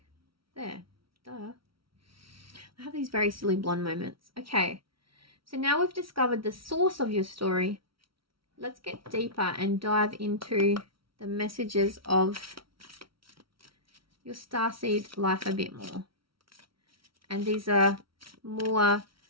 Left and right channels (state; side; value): late; left; 0.74 ms